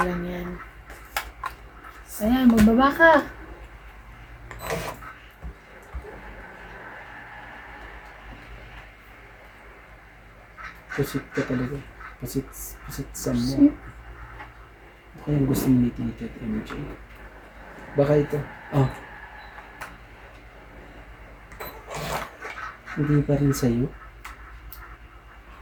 yan. Ayan, magbaba ka. Pusit ka talaga. Pusit sa mo. Ako yung gusto mo ni Tito at MJ. Baka ito. Oh. Hindi pa rin sa'yo.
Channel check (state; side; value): identical; both; correlation 1.00